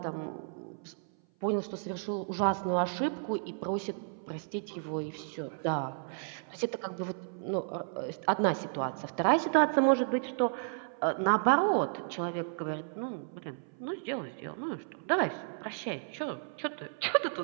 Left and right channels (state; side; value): silent; left; 55 dB below the other